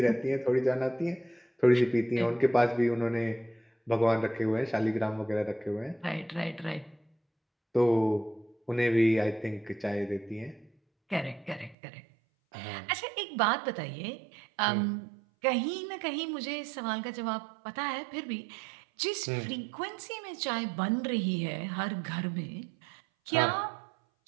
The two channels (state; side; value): drops out; left; at 11.8 s